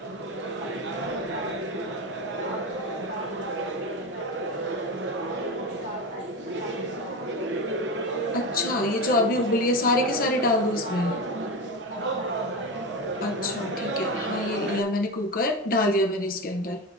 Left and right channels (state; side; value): normal; both; correlation 0.21